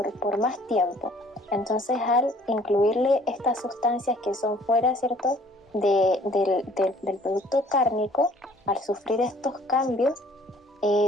más tiempo. Entonces, al incluirle estas sustancias que son fuera, ¿cierto?, del producto cárnico, al sufrir estos cambios,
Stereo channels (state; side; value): normal; both; correlation 0.56